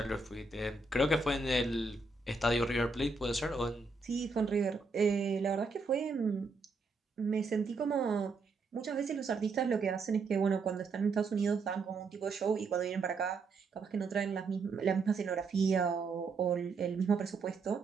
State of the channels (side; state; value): left; quieter; 3.9 dB